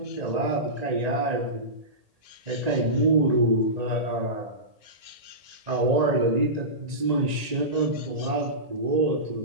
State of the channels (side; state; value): left; late; 1.9 ms